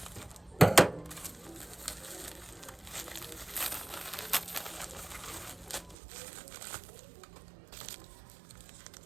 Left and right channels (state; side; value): drops out; left; at 6.0 s